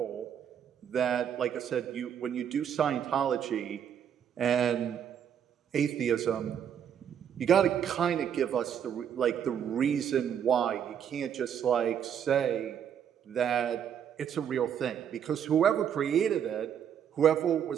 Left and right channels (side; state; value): left; quieter; 8.7 dB